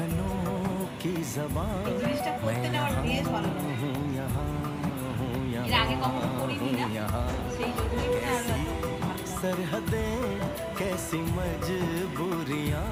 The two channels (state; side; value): identical; both; correlation 1.00